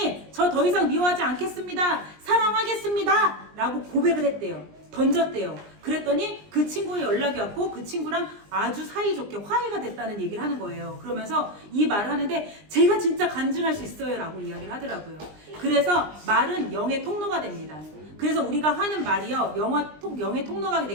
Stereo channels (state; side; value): late; left; 20 ms